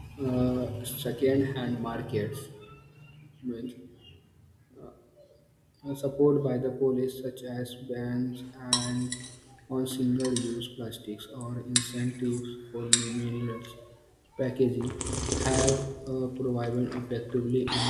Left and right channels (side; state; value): both; identical; correlation 1.00